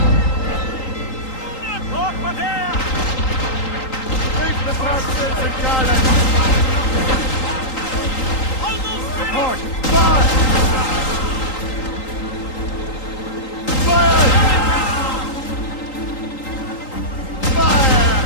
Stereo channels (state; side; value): late; right; 3.8 ms